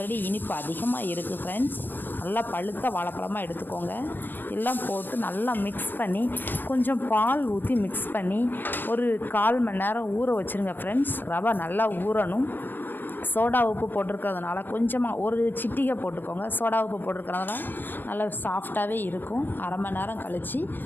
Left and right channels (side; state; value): right; late; 0.093 ms